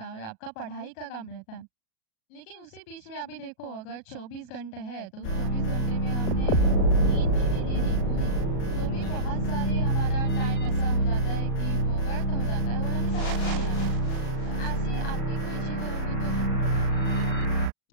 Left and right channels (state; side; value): late; right; 37 ms